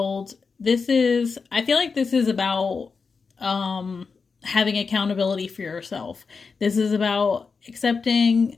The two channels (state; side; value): quieter; right; 5.0 dB